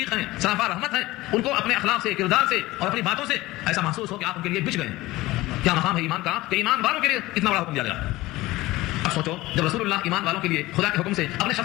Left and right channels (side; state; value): right; quieter; 18.7 dB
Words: ہیں, سراپا رحمت ہیں. ان کو اپنے اخلاق سے, کردار سے اور اپنی باتوں سے ایسا محسوس ہو کہ آپ ان کے لیے بچ گئے ہیں. کیا مقام ہے ایمان کا کہ ایمان والوں کے لیے اتنا بڑا حکم دیا گیا. اب سوچو جب رسول اللہ ایمان والوں کے لیے خدا کے حکم سے اپنے